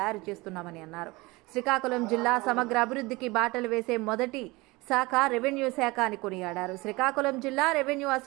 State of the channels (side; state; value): left; quieter; 22.7 dB